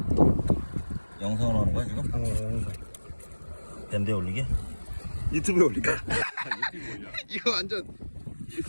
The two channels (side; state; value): both; inverted; correlation -1.00